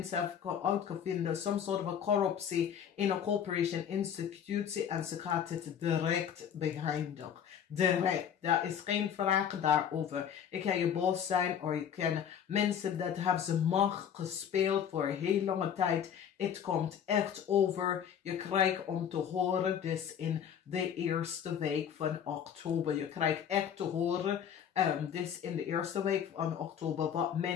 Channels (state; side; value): quieter; right; 8.6 dB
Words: hebben uitgevonden some sort of corruptie in een corporation institutie en ze gaat het direct beëindigen. Direct. Daar is geen vraag daarover. Ik kan je boos zijn of je kan mensen dat hebben ze macht gespeeld voor een heel lange tijd. Het komt echt over. Je krijgt om te horen dus in de eerste week van oktober. Je krijgt echt te horen dus in de eerste week van oktober wat